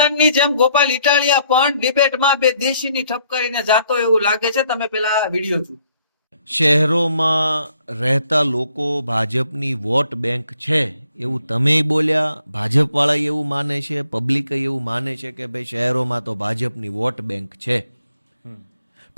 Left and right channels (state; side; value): inverted; both; correlation -0.68